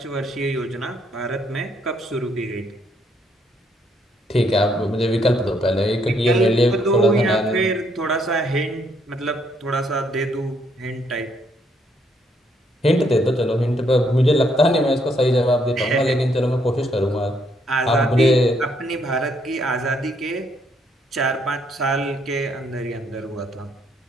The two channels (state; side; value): normal; both; correlation 0.71